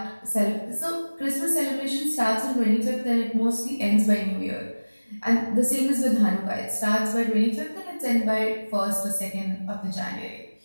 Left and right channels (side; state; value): both; inverted; correlation -1.00